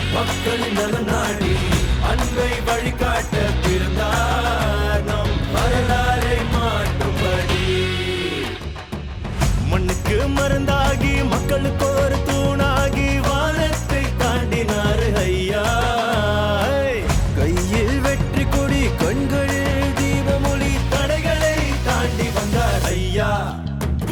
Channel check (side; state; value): both; identical; correlation 1.00